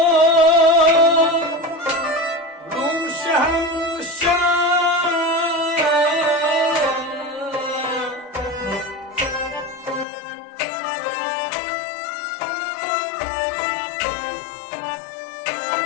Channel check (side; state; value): right; drops out; at 10.1 s